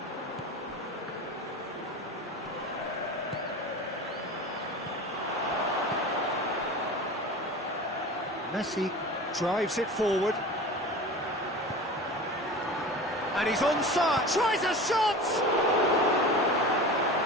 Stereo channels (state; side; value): normal; both; correlation 0.34